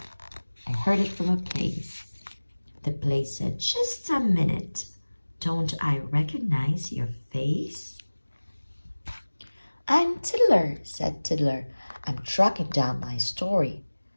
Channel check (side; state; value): both; inverted; correlation -1.00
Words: I heard it from a place. The place said, just a minute. Don't I recognize your face? I'm Tiddler, said Tiddler. I'm tracking down my story.